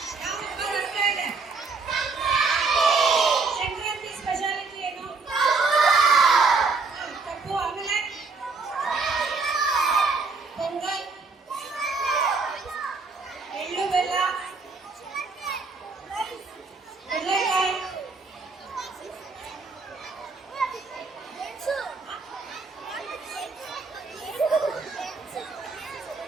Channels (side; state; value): left; quieter; 4.3 dB